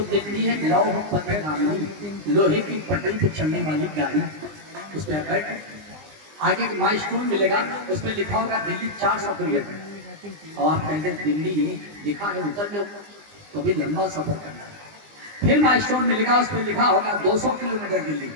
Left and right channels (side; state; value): left; late; 20 ms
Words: हिंदी है लौह पथ गामी, लोहे की पटरी पे चलने वाली गाड़ी। उस पर बैठ, आगे माइलस्टोन मिलेगा, उस पर लिखा होगा दिल्ली 400 किलोमीटर, और आप कहते हैं दिल्ली लिखा है उतर लो, तो भी लंबा सफर करना है। फिर माइलस्टोन मिलेगा, उस पर लिखा होगा 200 किलोमीटर दिल्ली,